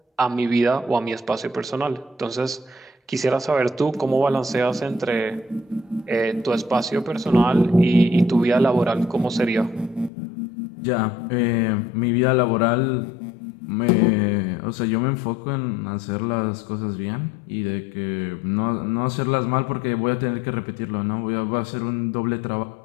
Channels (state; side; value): drops out; right; at 10.1 s